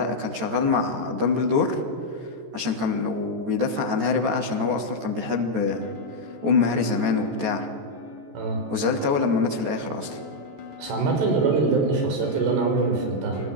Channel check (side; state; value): left; late; 14 ms